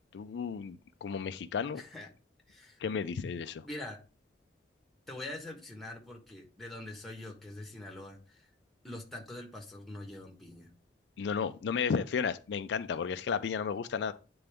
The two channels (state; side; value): quieter; right; 5.5 dB